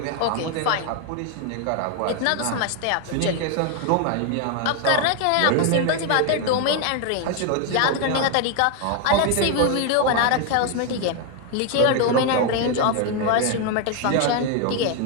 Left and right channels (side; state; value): both; different; correlation 0.01